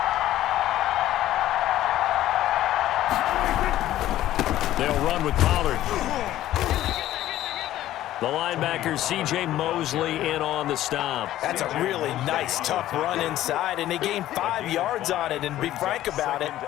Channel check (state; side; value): quieter; right; 13.8 dB